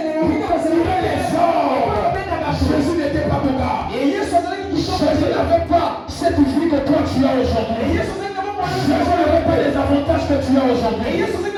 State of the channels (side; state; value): both; identical; correlation 1.00